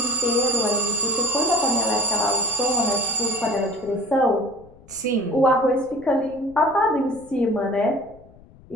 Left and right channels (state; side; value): noise; left; rumble, 24 dB below the sound